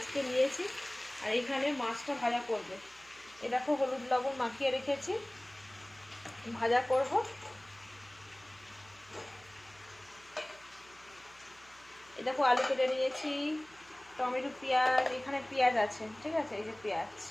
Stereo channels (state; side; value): noise; right; hum, 26 dB below the sound